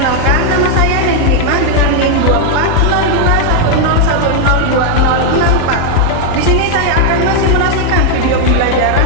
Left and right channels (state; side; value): different; both; correlation 0.00